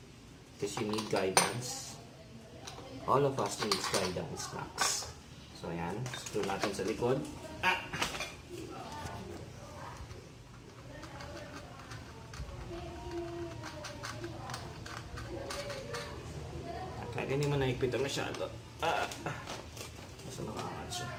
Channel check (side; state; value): both; identical; correlation 1.00